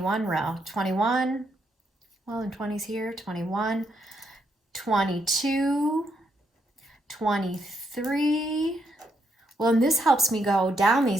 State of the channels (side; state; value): both; normal; correlation 0.77